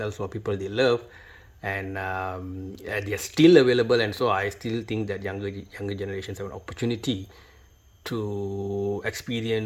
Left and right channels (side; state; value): both; identical; correlation 1.00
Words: or people they love, and they are still available. And so I still think that younger generations have an opportunity to